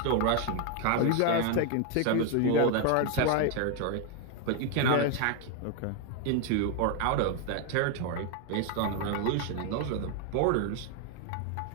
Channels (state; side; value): different; both; correlation 0.00